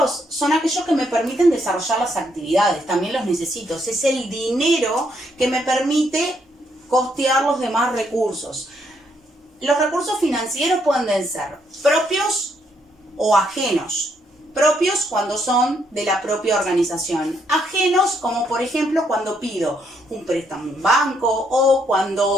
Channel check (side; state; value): both; normal; correlation 0.74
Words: son aquellos que me permiten desarrollar las actividades, también los necesito. Es el dinero que me permite costear los demás recursos. Los recursos financieros pueden ser propios o ajenos. Propios cuando son de la propia organización. Ajenos como por ejemplo cuando pido un préstamo en un banco o